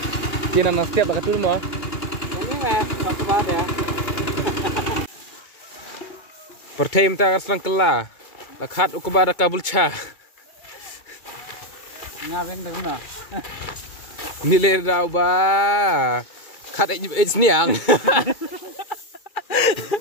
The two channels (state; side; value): late; right; 2.2 ms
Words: Kina na setiap bakat dulu mah. Ini lah, satu pada. Pertama kita akan kela. Lakat ukubara kabul cha. Ngabeng dah guna. Nilai daw ba? Kat it's niang.